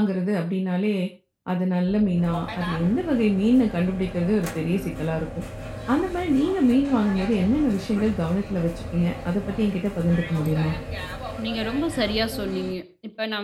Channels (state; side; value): identical; both; correlation 1.00